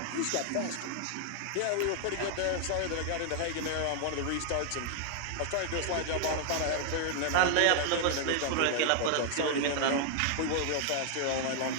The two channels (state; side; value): different; both; correlation 0.00